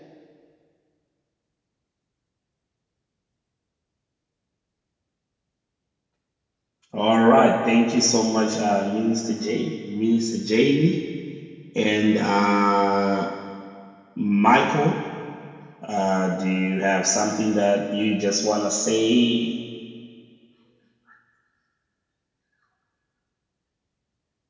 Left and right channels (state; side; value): identical; both; correlation 1.00